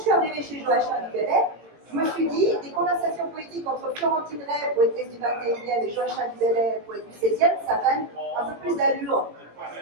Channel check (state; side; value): late; left; 18 ms